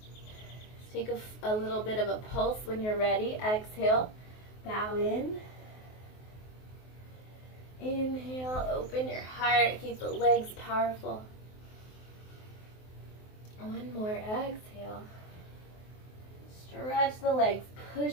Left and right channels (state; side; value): late; right; 23 ms